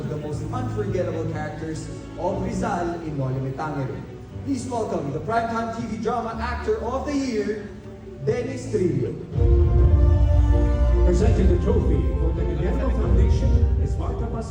the most unforgettable characters of Rizal in Noli Me Tangere. Please welcome the Primetime TV Drama Actor of the Year, Dennis Trillo. Presenting the trophy for the Guillermo Foundation is Marta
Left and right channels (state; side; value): identical; both; correlation 1.00